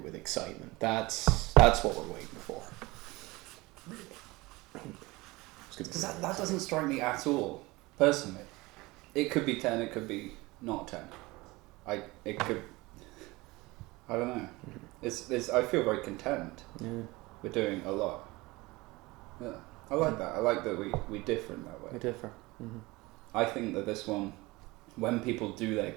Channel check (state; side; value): quieter; left; 22.0 dB